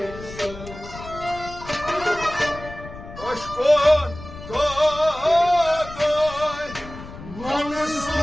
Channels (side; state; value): left; noise; rumble, 14 dB below the sound